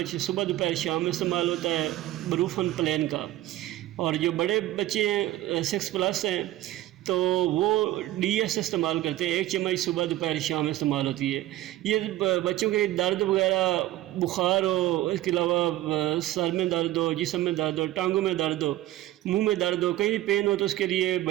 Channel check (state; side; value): quieter; left; 15.3 dB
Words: صبح دوپہر شام میں استعمال ہوتا ہے بروفن پلین کا۔ اور جو بڑے بچے ہیں 6+ ہیں تو وہ ڈی ایس استعمال کرتے ہیں، 1 چمچ صبح دوپہر شام استعمال ہوتی ہے۔ یہ بچوں کے درد وغیرہ، بخار ہو، اس کے علاوہ سر میں درد ہو، جسم میں درد ہو، ٹانگوں میں درد ہو، منہ میں درد ہو، کہیں بھی پین ہو تو اس کے لیے